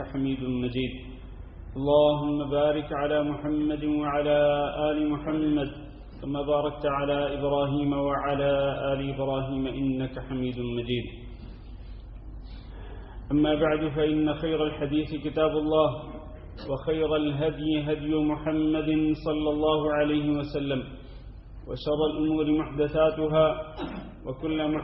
حميد مجيد اللهم بارك على محمد وعلى آل محمد كما باركت على إبراهيم وعلى آل إبراهيم إنك حميد مجيد أما بعد فإن خير الحديث كتاب الله وخير الهدي هدي محمد صلى الله عليه وسلم وشر الأمور محدثاتها وكل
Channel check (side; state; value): both; identical; correlation 1.00